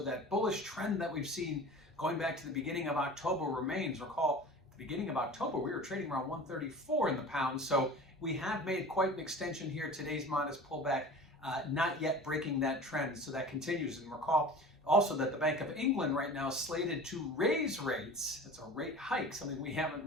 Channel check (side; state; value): both; normal; correlation 0.38